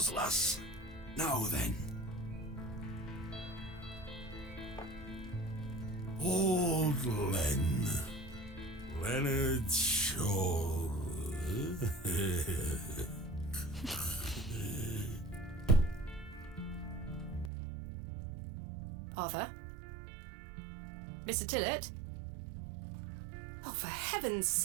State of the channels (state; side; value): drops out; left; at 17.5 s